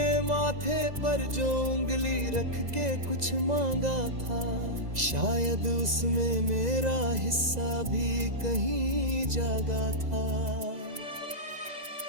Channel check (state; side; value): late; left; 2.0 ms